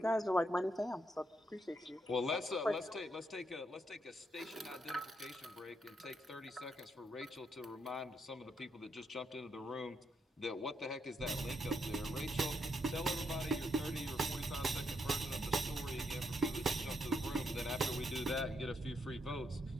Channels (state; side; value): normal; both; correlation 0.78